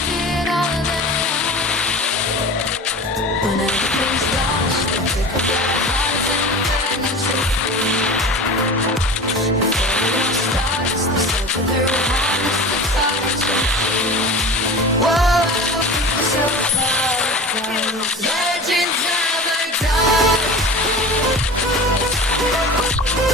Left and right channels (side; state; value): both; normal; correlation 0.34